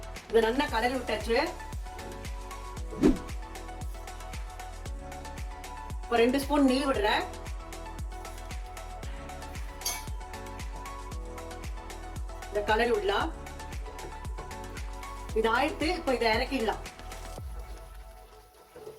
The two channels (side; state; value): both; identical; correlation 1.00